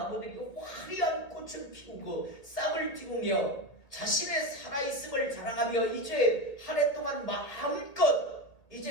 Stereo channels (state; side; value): late; right; 1.6 ms